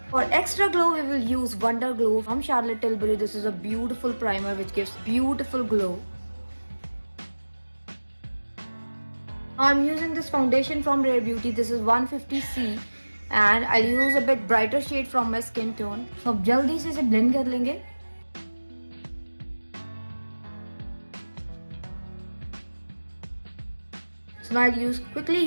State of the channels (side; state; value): both; inverted; correlation -1.00